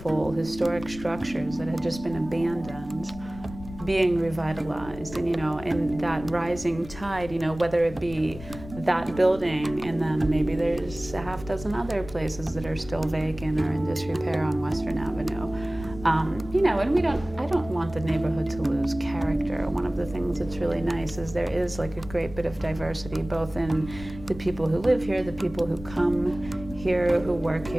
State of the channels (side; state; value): left; noise; rumble, 14 dB below the sound